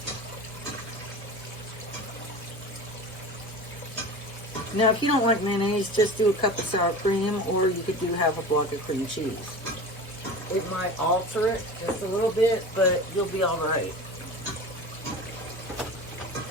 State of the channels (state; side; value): normal; both; correlation 0.33